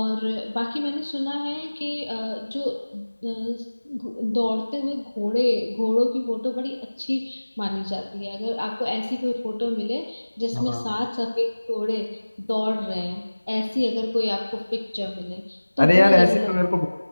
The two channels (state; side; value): inverted; both; correlation -1.00